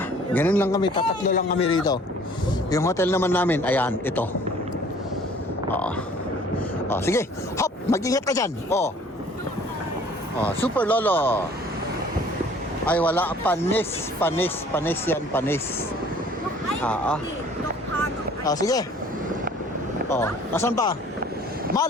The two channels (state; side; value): normal; both; correlation 0.53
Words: Ganun lang kami, tatatlo lang kami rito. Yung hotel naman namin, ayan, ito. Sige. Hop, mag-ingat ka dyan. Super lolo. Ay, wala. Panis yan, panis. Sige. Nasaan pa?